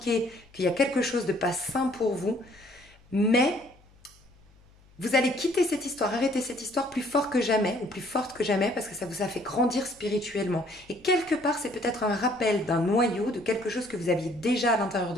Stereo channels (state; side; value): noise; left; hum, 28 dB below the sound